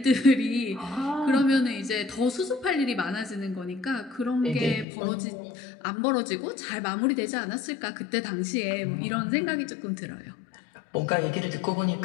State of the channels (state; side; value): drops out; right; at 4.9 s